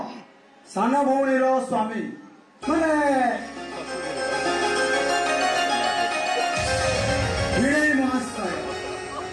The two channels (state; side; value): identical; both; correlation 1.00